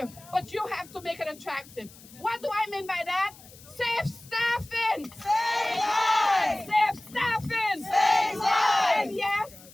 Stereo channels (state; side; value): noise; left; hiss, 22 dB below the sound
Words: but you have to make it attractive. What do I mean by that? Safe staffing. Save lives. Safe staffing. Save lives. And yes,